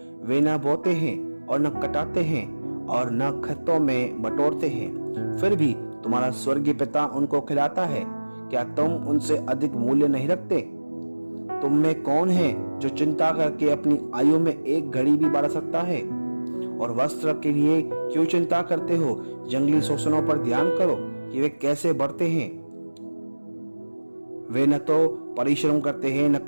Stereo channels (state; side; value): inverted; both; correlation -1.00